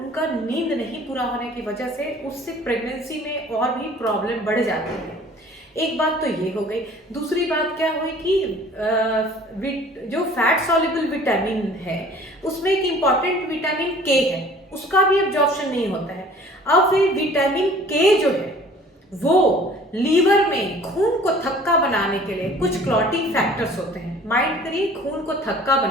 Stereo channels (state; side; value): normal; both; correlation 0.50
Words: नींद नहीं पूरा होने की वजह से, उससे प्रेगनेंसी में और भी प्रॉब्लम बढ़ जाती है। एक बात तो ये हो गई। दूसरी बात क्या हुई कि जो फैट सॉल्युबल विटामिन है उसमें एक इम्पॉर्टेंट विटामिन के है, उसका भी एब्जॉर्प्शन नहीं होता है। अब फिर विटामिन के जो है वो लीवर में खून को थक्का बनाने के लिए कुछ क्लॉटिंग फैक्टर्स होते हैं। माइंड करिए, खून को थक्का